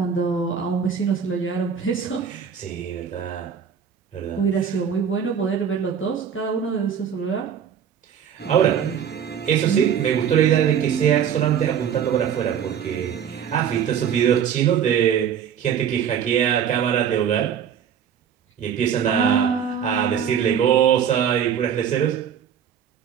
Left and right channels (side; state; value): left; quieter; 8.2 dB